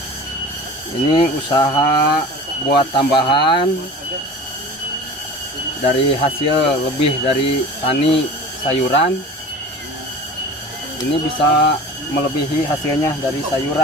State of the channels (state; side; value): normal; both; correlation 0.38